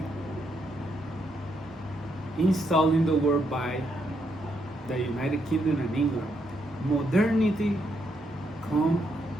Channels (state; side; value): normal; both; correlation 0.77